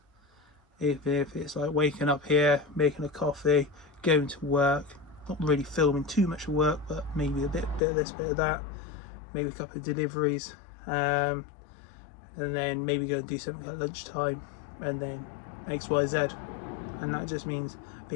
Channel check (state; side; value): drops out; right; at 7.8 s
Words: If it's like waking up here, making a coffee, going to work, not really filming too much work, but maybe a bit of this, bit of that, maybe a couple of deliveries, and then maybe go and do something at lunchtime, and then XYZ. And that just means